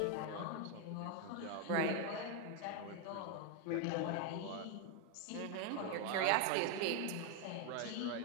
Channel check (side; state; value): both; different; correlation 0.01